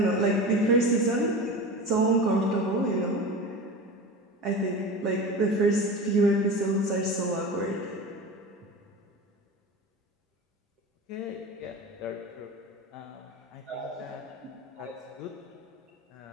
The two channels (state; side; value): normal; both; correlation 0.30